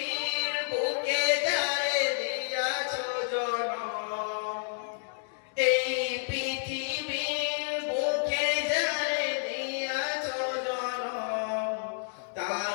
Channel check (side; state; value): right; silent; digital silence